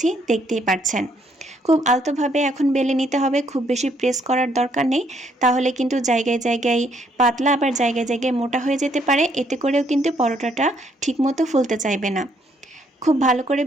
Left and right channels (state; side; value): normal; both; correlation 0.70